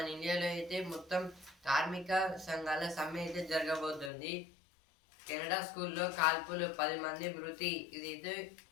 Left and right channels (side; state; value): right; drops out; at 4.1 s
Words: ఇండియాలో అయితే మొత్తం కార్మిక సంఘాల సమ్మె అయితే జరగబోతుంది. కెనడా స్కూల్లో కాల్పులు 10 మంది మృతి. ఇదైతే